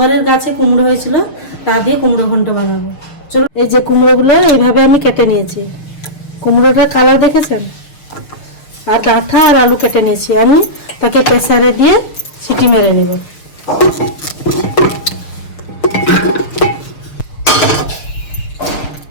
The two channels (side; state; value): right; late; 6.5 ms